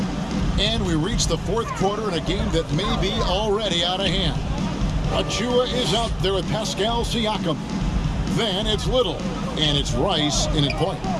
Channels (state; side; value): identical; both; correlation 1.00